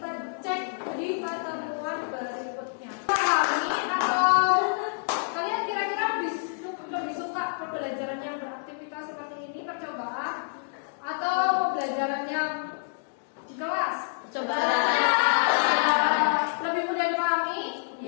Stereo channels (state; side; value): silent; right; digital silence